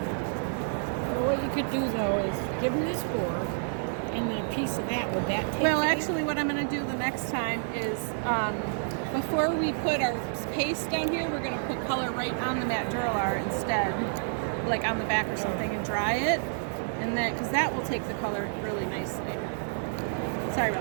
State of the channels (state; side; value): silent; left; digital silence